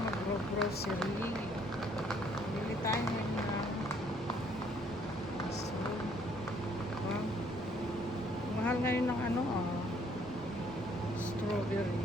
mag-grocery. Bili tayo ngayon na mushroom. Wow. Mahal ngayon ng ano strawberry.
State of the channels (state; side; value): normal; both; correlation 0.65